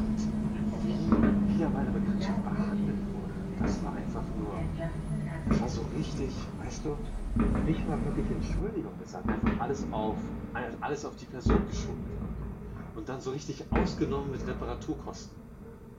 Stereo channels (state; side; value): identical; both; correlation 1.00